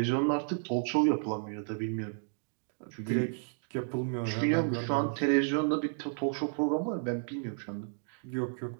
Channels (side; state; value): left; silent; digital silence